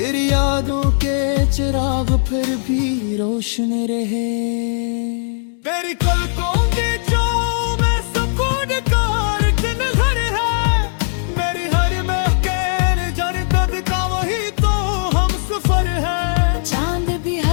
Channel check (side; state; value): right; silent; digital silence